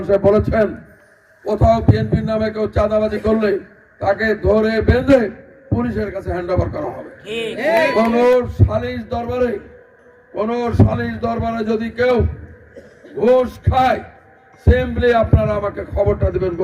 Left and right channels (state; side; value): identical; both; correlation 1.00